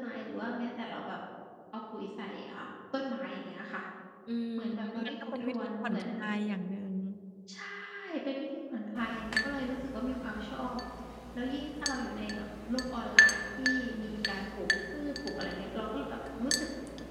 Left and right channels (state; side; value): identical; both; correlation 1.00